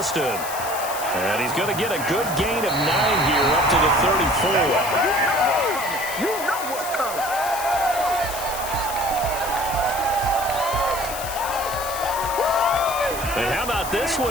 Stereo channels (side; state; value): left; noise; hiss, 9 dB below the sound